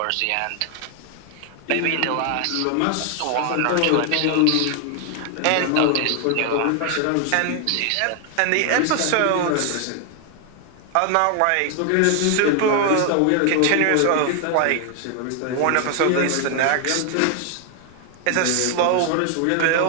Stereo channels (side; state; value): both; different; correlation 0.00